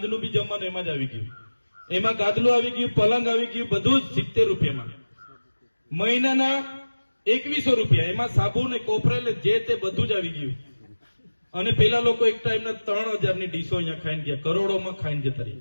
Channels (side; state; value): both; inverted; correlation -1.00